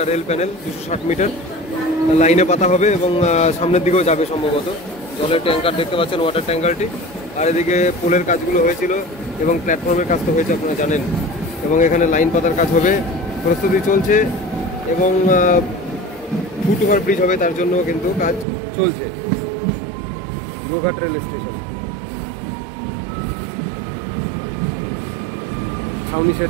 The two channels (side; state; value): left; drops out; at 18.4 s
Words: রেল প্যানেল, 260 মিটার লাইনে পাতা হবে এবং সামনের দিকেও যাবে সম্ভবত। জলের ট্যাঙ্কার দেখতে পাচ্ছেন, ওয়াটার ট্যাঙ্কারটি। আর এদিকে পোলের কাজগুলো হয়েছিল এবং প্ল্যাটফর্মের কাজ তো হয়েছে, আপনারা জানেন। এবং এখানে লাইন পাতার কাজ হবে, প্রস্তুতি চলছে এবং ফুট ওভার ব্রিজ হবে, তার জন্য কিন্তু কাজ চলছে। গোঘাট রেল স্টেশন, ছাউনি শেড